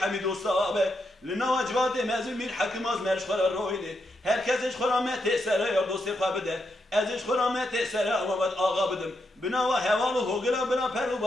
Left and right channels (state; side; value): normal; both; correlation 0.82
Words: دوستا به لنا وجبات مزل میر حکم از مرش خورا رویده هر کسش خورا مت سره یا دوستی خوابده ازش خورا مت سره آمد آقا بدم بنا و حوال و هوگلا بنا پر و